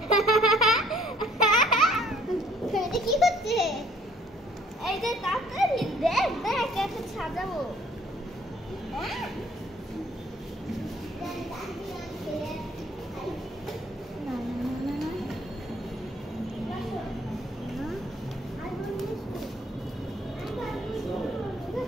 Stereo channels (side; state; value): both; normal; correlation 0.59